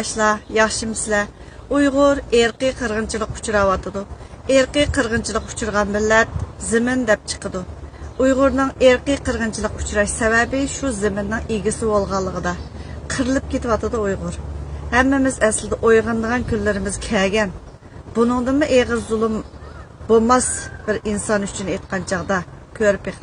yaxshimisizlar? Uyg'ur erkiy qirg'inchilik uchrayotidi. Erkiy qirg'inchilik uchirgan millat zimin deb chiqadi. Uyg'urning erkiy qirg'inchilik uchrash sababi shu ziminning egisi bo'lganligida. Qirilib ketyotidi Uyg'ur. Hammamiz aslida o'yg'onadigan kunlarimiz kelgan. Buningdanmi eg'iz zulm bo'lmas bir inson uchun aytgan chaqda ko'rib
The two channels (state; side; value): identical; both; correlation 1.00